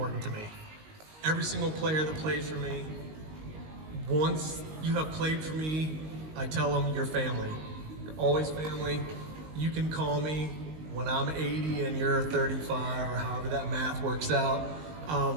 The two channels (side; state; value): left; late; 19 ms